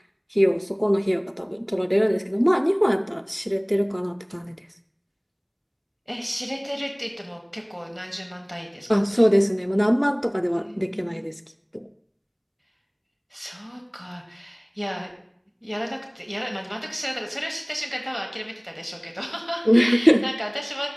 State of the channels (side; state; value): both; identical; correlation 1.00